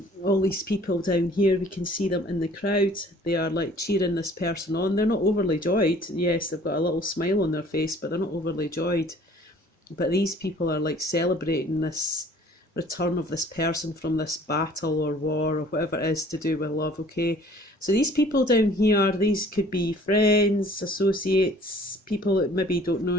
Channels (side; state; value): both; normal; correlation 0.53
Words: All these people down here, we can see them in the crowd. They are like cheering this person on. They're not overly joyed. Yes, they've got a little smile on their face, but they're not overly joyed. But these people are like celebrating this return of this person from this battle or war or whatever it is to do with love, okay? So these people down here, these could be friends, associates, people that maybe don't know